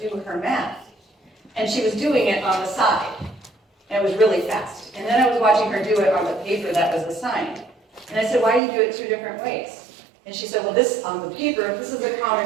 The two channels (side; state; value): left; drops out; at 8.6 s